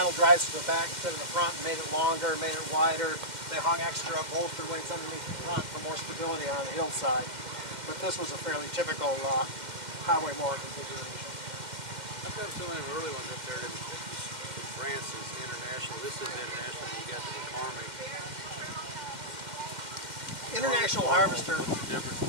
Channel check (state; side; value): late; left; 2.1 ms